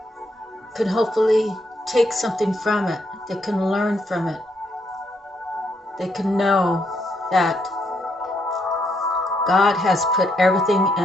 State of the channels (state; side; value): normal; both; correlation 0.76